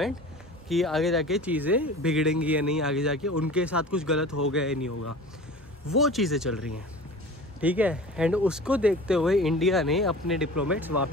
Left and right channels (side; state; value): both; normal; correlation 0.38